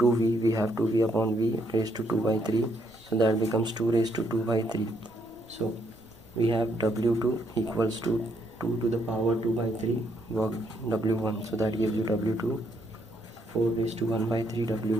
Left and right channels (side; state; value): both; normal; correlation 0.73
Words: we have 2V upon V raised to 2 by 3. So that becomes 2 raised to 2 by 3. So we have W2 equals to 2 to the power 2 by 3 work W1. So that gives you W2 4 raised to 1 by 3